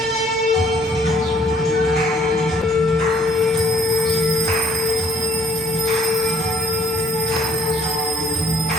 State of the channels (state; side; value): normal; both; correlation 0.62